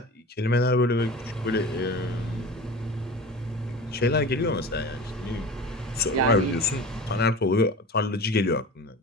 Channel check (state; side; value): normal; both; correlation 0.35